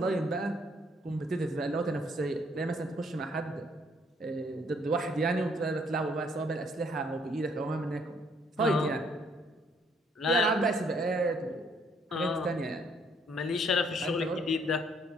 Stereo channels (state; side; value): normal; both; correlation 0.66